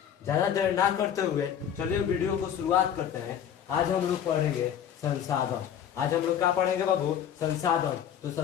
ज्यादा देर ना करते हुए चलिए वीडियो को शुरुआत करते हैं। आज हम लोग पढ़ेंगे संसाधन। आज हम लोग क्या पढ़ेंगे बाबू? संसाधन। तो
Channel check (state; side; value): quieter; right; 9.2 dB